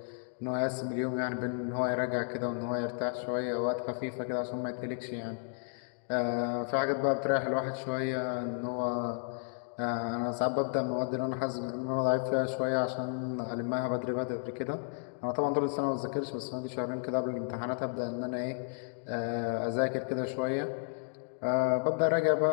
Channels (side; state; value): right; silent; digital silence